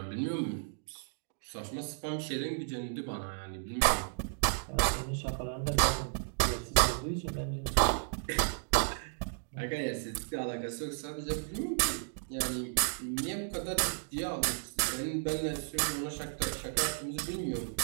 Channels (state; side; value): silent; left; digital silence